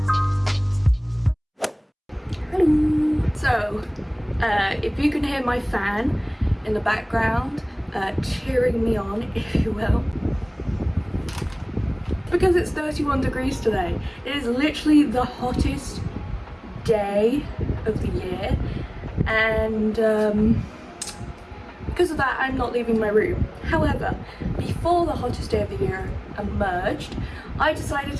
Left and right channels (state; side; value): identical; both; correlation 1.00